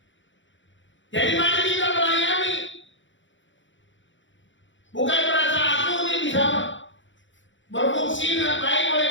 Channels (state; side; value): late; right; 0.55 ms